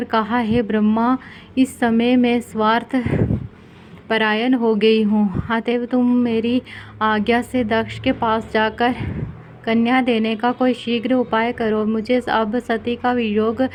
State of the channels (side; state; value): both; identical; correlation 1.00